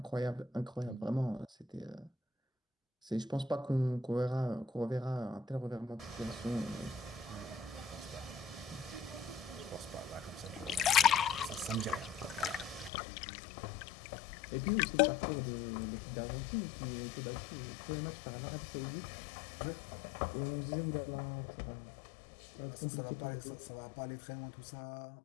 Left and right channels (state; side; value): drops out; right; at 12.9 s